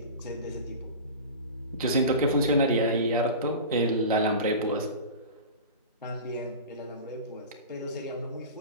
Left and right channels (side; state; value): both; inverted; correlation -0.32